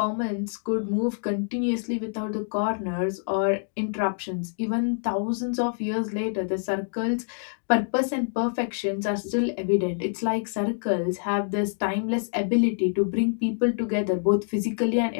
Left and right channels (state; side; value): silent; right; digital silence